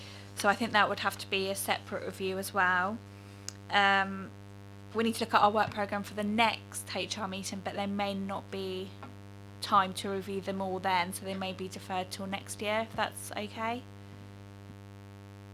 so I think that would have to be a separate review as well. We need to look at our work programme for the next HR meeting, but there may not be time to review them all then, so they may be deferred till next year, if that's okay.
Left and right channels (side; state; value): both; identical; correlation 1.00